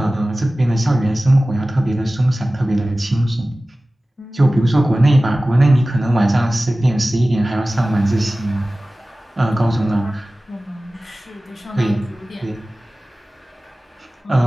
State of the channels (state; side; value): normal; both; correlation 0.97